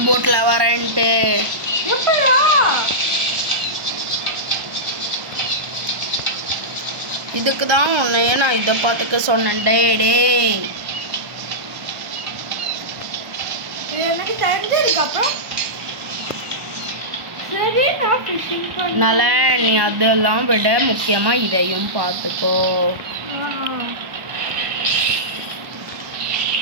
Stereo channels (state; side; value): late; left; 1.1 ms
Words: போட்ல வரேன்ட்டு. இதுக்கு தான் உன்னையே நான் இதை பார்த்துக்க சொன்னேன். டே நலன் நீ அதெல்லாம் விட முக்கியமா இதையும் பார்த்துக்கோ.